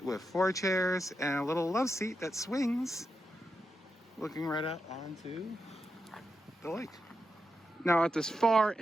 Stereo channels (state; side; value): normal; both; correlation 0.87